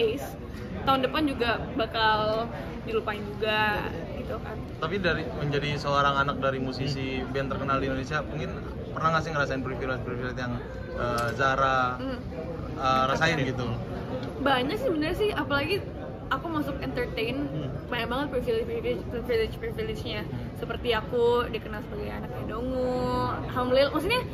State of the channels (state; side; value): identical; both; correlation 1.00